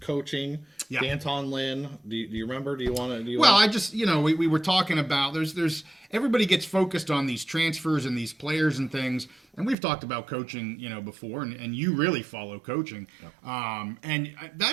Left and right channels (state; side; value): drops out; left; at 9.8 s